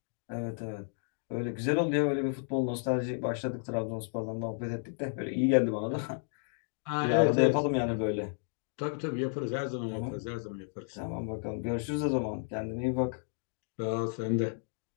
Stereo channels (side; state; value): right; silent; 56 dB below the other